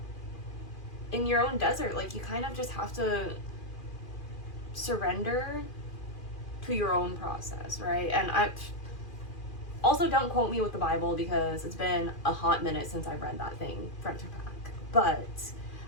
in your own desert, like you kind of just have to surrender to your own process, right? And I also, don't quote me with the Bible because it's been a hot minute since I've read that thing front to back. But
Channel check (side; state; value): right; late; 2.4 ms